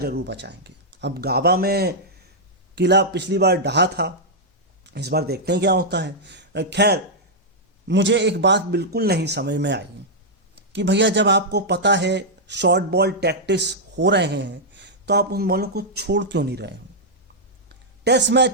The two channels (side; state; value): both; normal; correlation -0.07